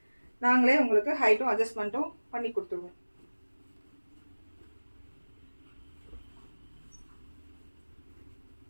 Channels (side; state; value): both; inverted; correlation -1.00